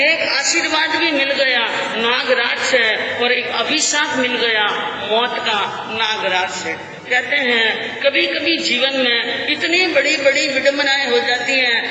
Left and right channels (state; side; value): identical; both; correlation 1.00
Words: आशीर्वाद भी मिल गया नागराज से और एक अभिशाप मिल गया मौत का नागराज से। कहते हैं कभी कभी जीवन में इतनी बड़ी बड़ी विडंबनाएं हो जाती हैं,